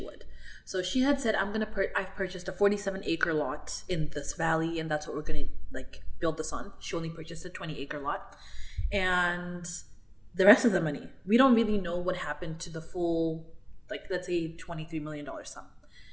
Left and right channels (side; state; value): both; identical; correlation 1.00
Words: So she had said, I've purchased a 47-acre lot in this valley, and that's what we're going to build this on. She only purchased a 20-acre lot. And the rest of the money, we don't really know what happened to the full, let's say $23 million sum.